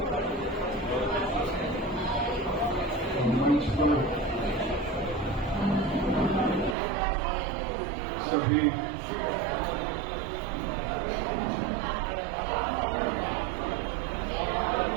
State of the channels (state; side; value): drops out; left; at 6.8 s